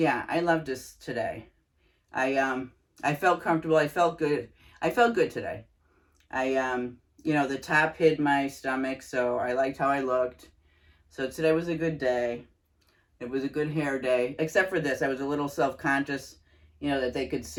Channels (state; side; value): identical; both; correlation 1.00